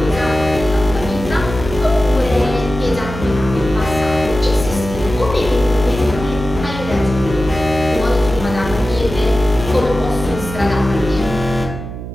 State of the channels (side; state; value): right; noise; hum, 9 dB below the sound